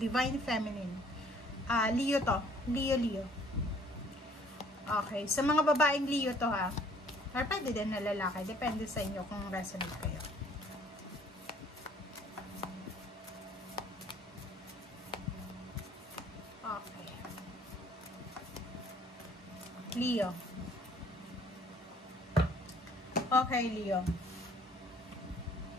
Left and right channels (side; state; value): both; normal; correlation 0.58